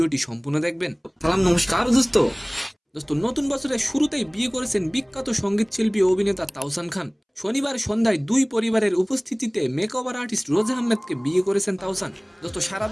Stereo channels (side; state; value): both; identical; correlation 1.00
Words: সম্পূর্ণ দেখবেন। সালাম, নমস্কার দোস্ত। নতুন বছরের শুরুতেই বিয়ে করেছেন বিখ্যাত সঙ্গীত শিল্পী ও অভিনেতা তাওসান খান। শনিবার সন্ধ্যায় দুই পরিবারের উপস্থিতিতে মেকওভার আর্টিস্ট রোজা আহমেদকে বিয়ে করেছেন তাওসান। সারা